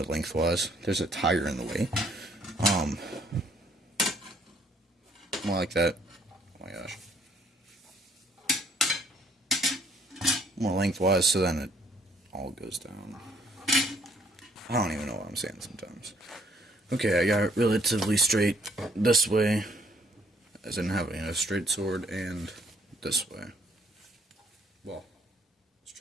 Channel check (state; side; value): normal; both; correlation 0.64